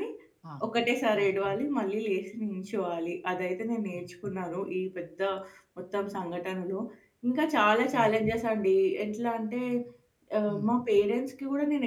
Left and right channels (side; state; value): both; identical; correlation 1.00